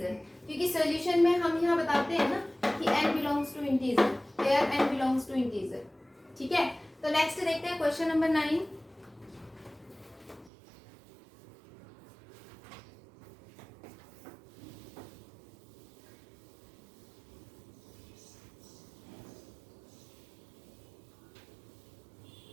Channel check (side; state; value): left; drops out; at 10.5 s